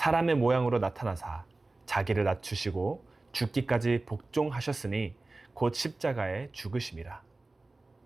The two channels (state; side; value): quieter; left; 3.1 dB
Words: 모양으로 나타나사 자기를 낮추시고 죽기까지 복종하셨으니 곧 십자가에 죽으심이라.